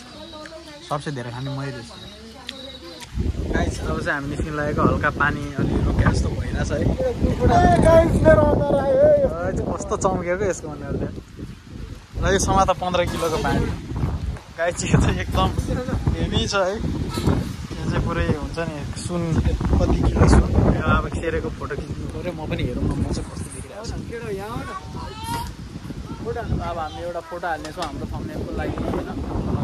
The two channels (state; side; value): identical; both; correlation 1.00